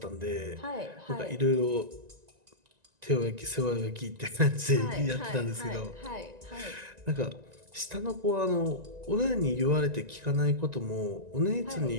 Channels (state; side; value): late; left; 1.9 ms